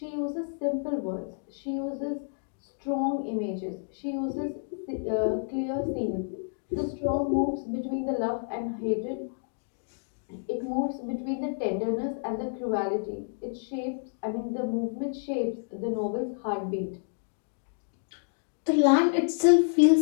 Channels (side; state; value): right; silent; digital silence